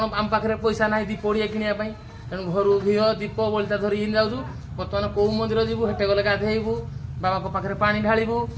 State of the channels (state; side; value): identical; both; correlation 1.00